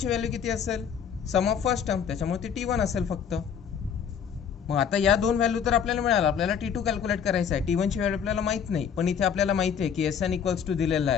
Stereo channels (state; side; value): quieter; right; 7.6 dB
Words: व्हॅल्यू किती असेल? सम ऑफ फर्स्ट टर्म, त्याच्यामुळे ती T1 असेल फक्त. मग आता या दोन व्हॅल्यू तर आपल्याला मिळाला. आपल्याला T2 कॅल्क्युलेट करायचा आहे. T1 ची व्हॅल्यू आपल्याला माहित नाही, पण इथे आपल्याला माहिती आहे की Sn इक्वल्स टू दिलेला